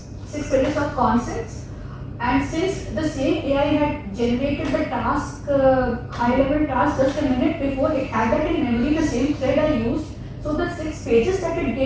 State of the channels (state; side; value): identical; both; correlation 1.00